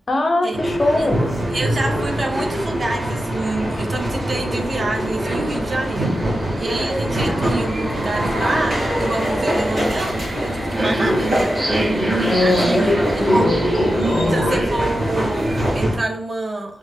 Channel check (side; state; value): both; normal; correlation 0.90